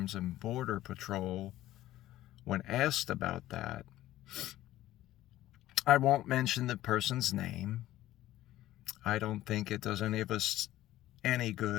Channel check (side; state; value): right; quieter; 14.7 dB